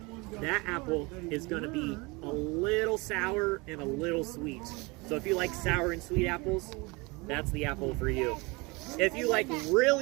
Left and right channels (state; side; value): quieter; left; 26.2 dB